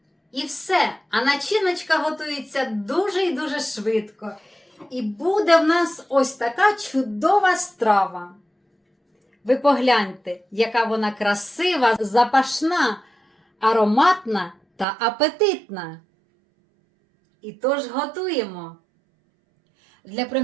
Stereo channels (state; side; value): drops out; left; at 14.9 s